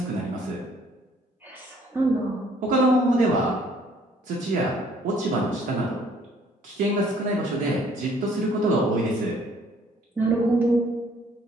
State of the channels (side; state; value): both; normal; correlation 0.60